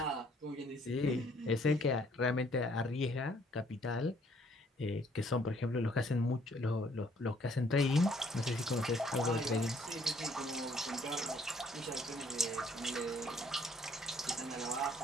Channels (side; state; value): both; normal; correlation 0.63